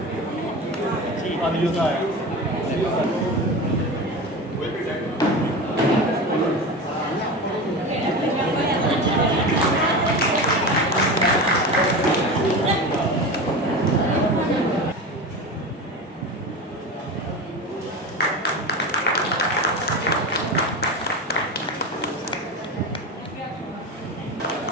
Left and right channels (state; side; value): normal; both; correlation 0.27